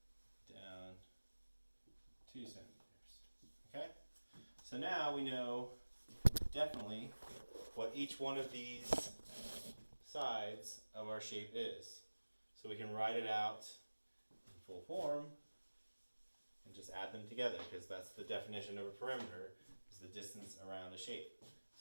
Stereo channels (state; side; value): inverted; both; correlation -1.00